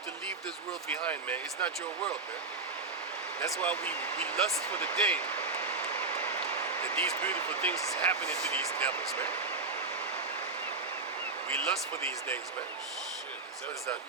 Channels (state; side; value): quieter; left; 3.9 dB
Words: to leave this world behind, man. It's not your world, man. That's why we lust for the day that these beautiful things is happening to these devils, man. We lust for these days, man. Shit, What is that?